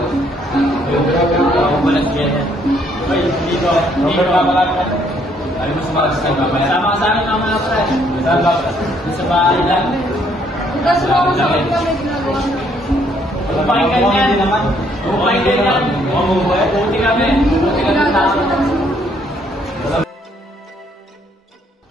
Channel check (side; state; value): both; normal; correlation 0.67